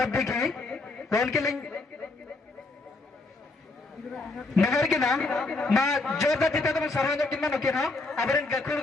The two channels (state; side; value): quieter; right; 3.3 dB